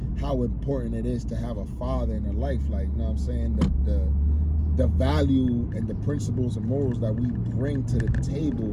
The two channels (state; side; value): identical; both; correlation 1.00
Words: how important it is to have a father in her life. Like, you know what I'm saying? The value and the principles and morals that we bring to the